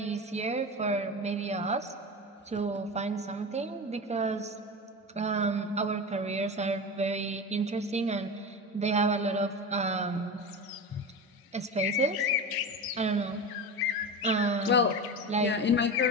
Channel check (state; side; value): normal; both; correlation 0.25